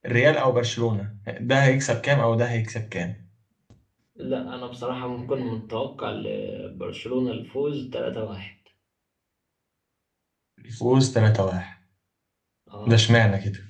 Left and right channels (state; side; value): identical; both; correlation 1.00